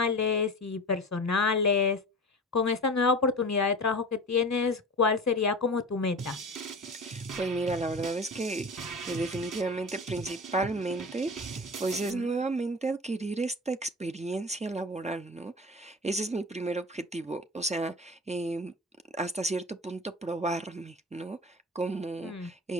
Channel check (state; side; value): normal; both; correlation 0.34